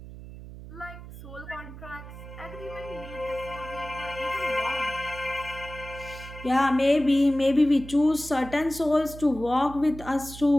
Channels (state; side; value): noise; right; hum, 14 dB below the sound